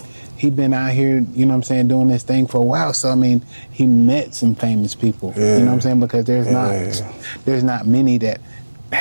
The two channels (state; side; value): inverted; both; correlation -1.00